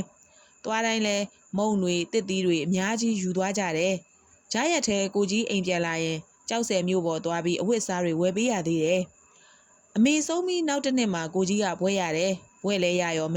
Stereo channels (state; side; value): identical; both; correlation 1.00